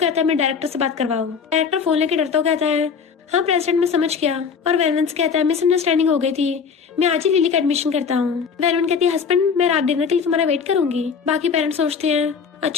है मैं डायरेक्टर से बात करवाऊं। डायरेक्टर फोन लेके डरता कहता है हाँ प्रेसिडेंट मैं समझ गया। और वैलेंस कहता है मिसअंडरस्टैंडिंग हो गई थी, मैं आज ही लिली का एडमिशन करता हूँ। वैलेंस कहती है हस्बैंड मैं रात डिनर के लिए तुम्हारा वेट करूंगी। बाकी पेरेंट्स सोचते हैं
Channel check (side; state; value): right; quieter; 6.1 dB